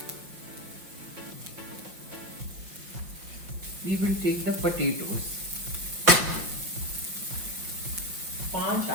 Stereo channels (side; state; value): left; late; 5.6 ms